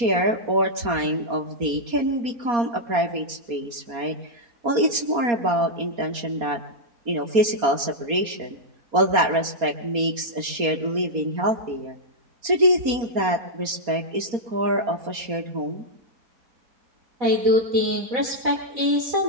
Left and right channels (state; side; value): late; left; 4.3 ms